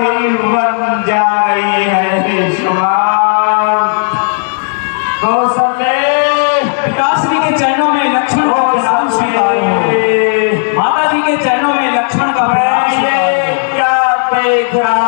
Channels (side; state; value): right; silent; digital silence